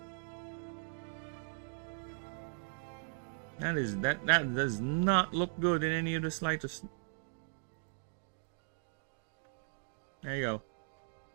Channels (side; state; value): left; silent; digital silence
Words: That does not look good in any of the slightest. There you go.